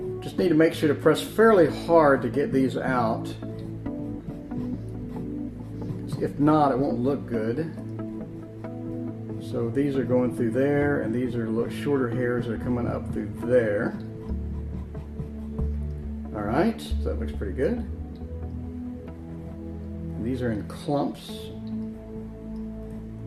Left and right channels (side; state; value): both; identical; correlation 1.00